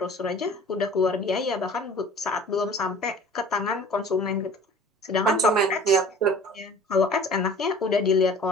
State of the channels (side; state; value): both; normal; correlation 0.46